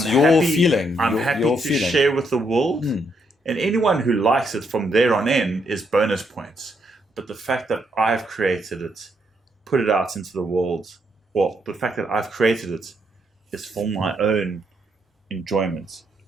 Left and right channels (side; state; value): both; normal; correlation 0.76